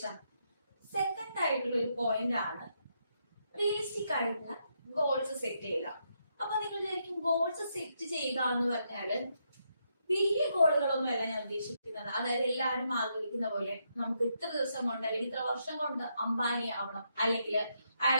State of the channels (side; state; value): both; inverted; correlation -0.79